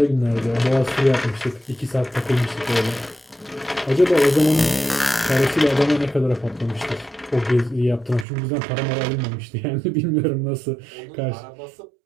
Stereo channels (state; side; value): drops out; left; at 8.2 s